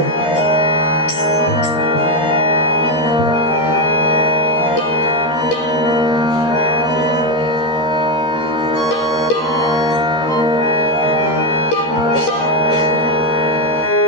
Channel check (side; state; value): right; late; 13 ms